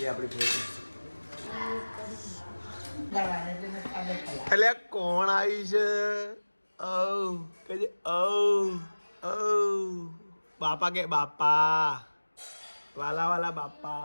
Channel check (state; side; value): inverted; both; correlation -1.00